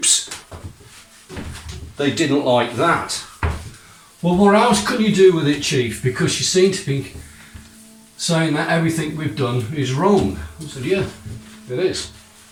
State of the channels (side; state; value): both; identical; correlation 1.00